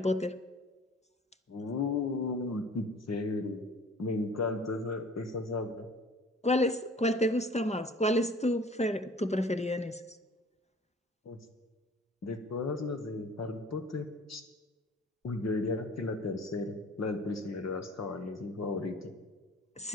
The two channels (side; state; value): both; normal; correlation 0.48